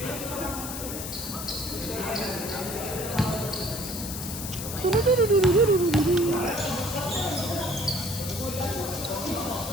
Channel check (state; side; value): noise; left; hiss, 7 dB below the sound